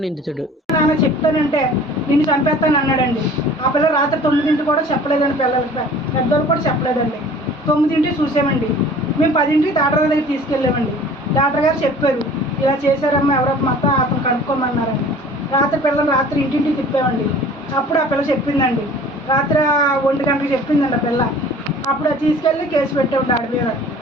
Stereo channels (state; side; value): normal; both; correlation 0.47